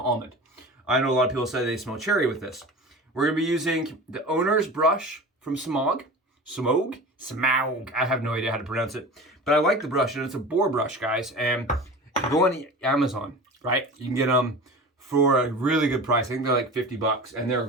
almond. I know a lot of people say they smell cherry with this. We're gonna be using the owner's brush from Semogue. Semogue. I have no idea how to pronounce it, but I like the brush, and it's a boar brush, guys. And go on Amazon, right? You can get them for a really good price. I think they're like $50, and they're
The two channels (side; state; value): both; normal; correlation 0.34